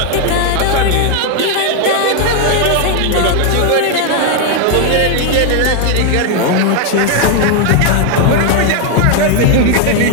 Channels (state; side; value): different; both; correlation 0.00